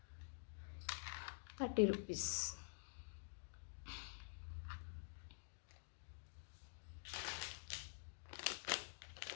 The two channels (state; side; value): silent; right; digital silence